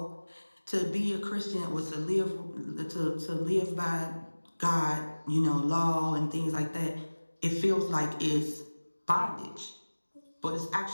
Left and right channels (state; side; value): inverted; both; correlation -1.00